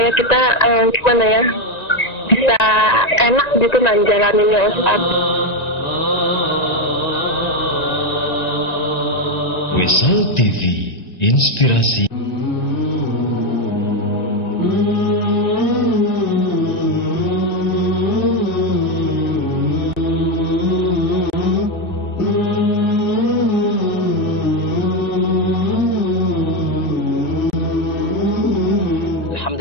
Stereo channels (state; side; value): late; right; 1.9 ms